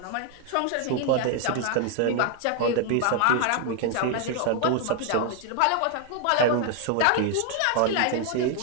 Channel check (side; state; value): both; different; correlation 0.00